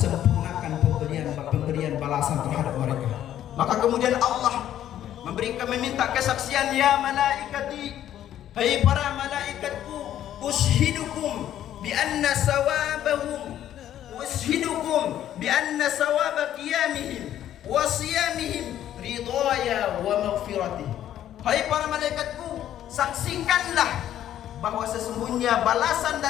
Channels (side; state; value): right; quieter; 11.5 dB